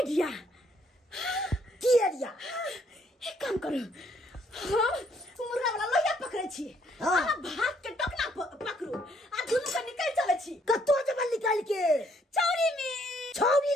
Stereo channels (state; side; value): normal; both; correlation 0.68